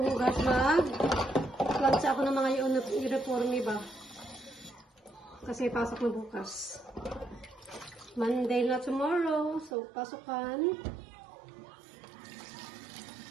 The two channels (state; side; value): drops out; left; at 9.7 s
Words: hugas, mag-lunch ako ng mga uniforme ba. Kasi pasok na bukas. Monday na tomorrow. So, pasukan.